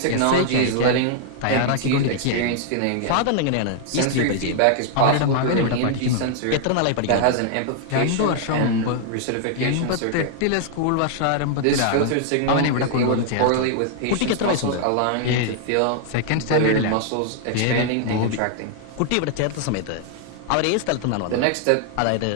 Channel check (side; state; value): both; different; correlation 0.00